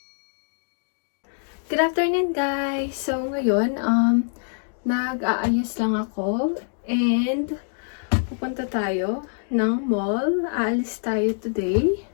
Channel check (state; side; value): silent; right; digital silence